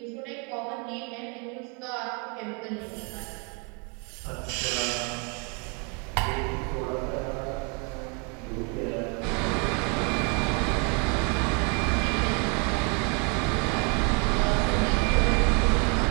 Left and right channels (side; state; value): left; quieter; 33.9 dB